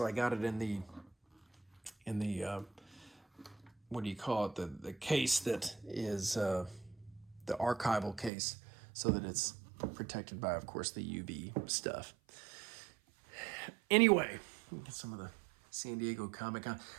I got it in the what do you call it? The case that is the archival case, so that it's protected by, of course, the UV stuff. Anyway, get some of the San Diego Comic-Con.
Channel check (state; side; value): drops out; left; at 8.3 s